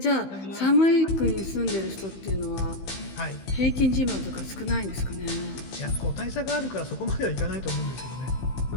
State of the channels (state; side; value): late; right; 15 ms